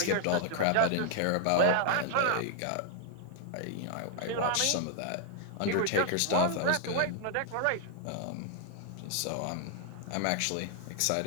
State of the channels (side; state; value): both; different; correlation 0.00